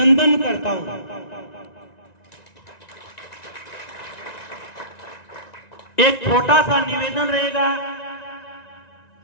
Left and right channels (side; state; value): right; late; 1.9 ms